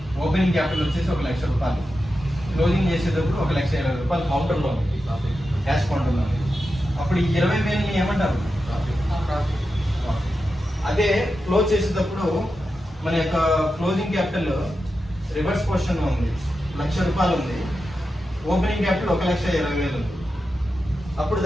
ఓపెనింగ్ క్యాపిటల్ వచ్చేసి ₹1,00,000, క్లోజింగ్ చేసేటప్పుడు ₹1,20,000 కౌంటర్లో ఉంది, క్యాష్ కౌంటర్లో ఉంది. అప్పుడు ఈ 20,000ని ఏమంటారు? అదే క్లోజ్ చేసేటప్పుడు మన యొక్క క్లోజింగ్ క్యాపిటల్ రివర్స్ పొజిషన్ లో ఉంది, ₹1,00,000 ఉంది, ఓపెనింగ్ క్యాపిటల్ 1,20,000 ఉంది. అప్పుడు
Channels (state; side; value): normal; both; correlation 0.90